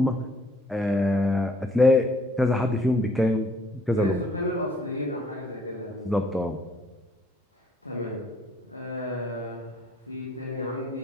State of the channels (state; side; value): normal; both; correlation 0.63